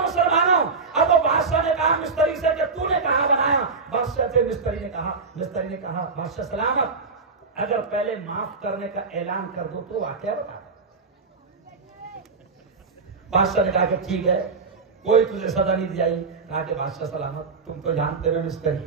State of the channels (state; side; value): quieter; left; 4.5 dB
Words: مسلمانوں, اب وہ بادشاہ نے کہا مستری سے کہ تو نے کہاں بنایا. بادشاہ سے مستری نے کہا بادشاہ سلامت اگر پہلے معاف کرنے کا اعلان کر دو تو واقعہ بتا. بادشاہ نے کہا کہ ٹھیک ہے کوئی تجھے سزا نہیں دی جائے. کہا کہ بادشاہ سلامت تم تو جانتے ہو